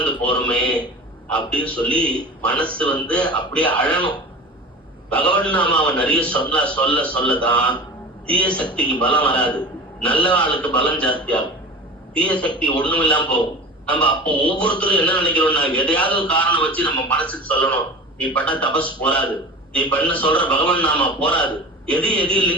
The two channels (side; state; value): both; normal; correlation 0.35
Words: போறோமே அப்படின்னு சொல்லி மனசு அப்படியே அழணும். பகவன் நாமாவை நிறைய சொல்லதான் தீய சக்திக்கு பலம் வராது, நல்ல ஆளுக்கு பலம் ஜாஸ்தியாகும். தீய சக்தி ஒண்ணும் இல்லாம போகும். நம்ம அப்போ ஒவ்வொருத்தரும் என்ன நினைக்கிறோம்னா, எதையாவது ஒரு காரணம் வச்சு நம்ம மனசுக்கு சொல்லணும், நீ பண்ண தபஸ் போராது, நீ பண்ண சொல்ற பகவன் நாமா போராது, எதையும்